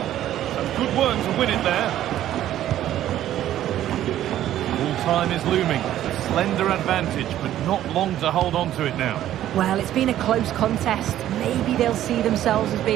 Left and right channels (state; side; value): quieter; left; 12.5 dB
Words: Some good work to win it there. Time is looming. A slender advantage, but not long to hold on to it now. Well, it's been a close contest. Maybe they'll see themselves as